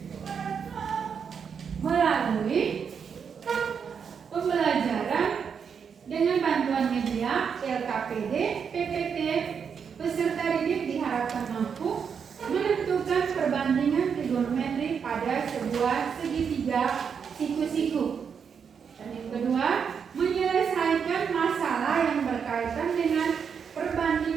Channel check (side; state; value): left; quieter; 6.7 dB